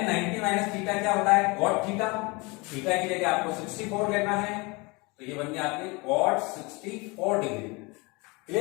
90 माइनस थीटा क्या होता है, cot थीटा। थीटा की जगह आपको 64 लेना है, तो ये बन गया आपके cot 64 डिग्री।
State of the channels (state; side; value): quieter; right; 26.6 dB